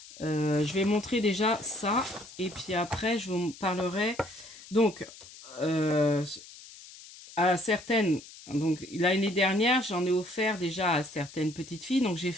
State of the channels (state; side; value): noise; left; hiss, 18 dB below the sound